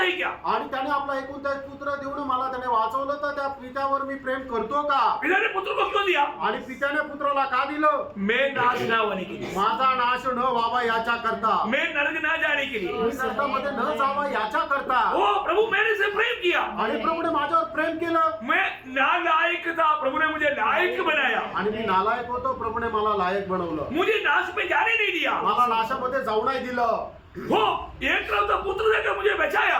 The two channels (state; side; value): identical; both; correlation 1.00